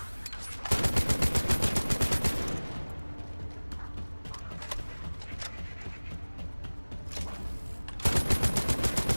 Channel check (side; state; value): both; inverted; correlation -1.00